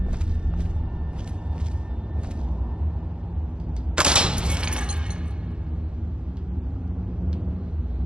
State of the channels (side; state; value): left; late; 0.049 ms